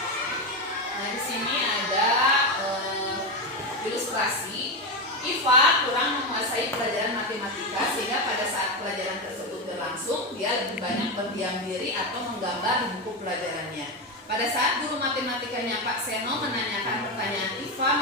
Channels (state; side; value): normal; both; correlation 0.13